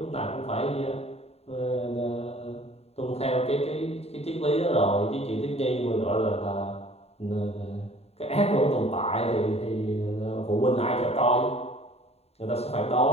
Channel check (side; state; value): right; late; 0.30 ms